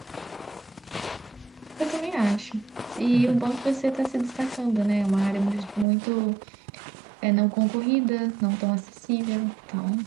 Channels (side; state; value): left; drops out; at 5.9 s